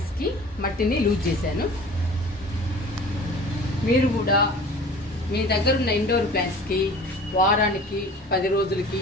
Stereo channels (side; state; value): both; normal; correlation 0.43